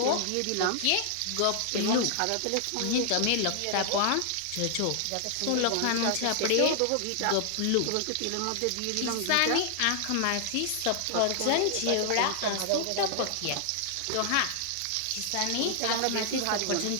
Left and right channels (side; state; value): both; different; correlation 0.00